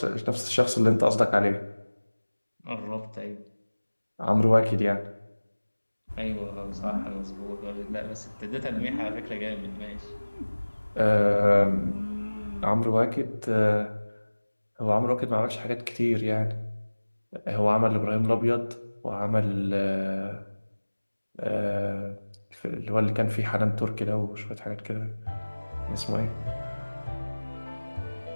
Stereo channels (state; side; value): inverted; both; correlation -1.00